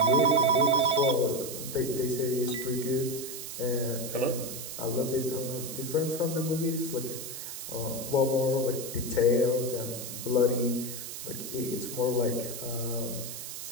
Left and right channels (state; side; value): noise; right; hiss, 8 dB below the sound